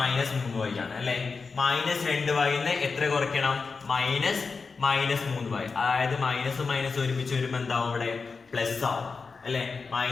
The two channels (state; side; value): quieter; right; 4.7 dB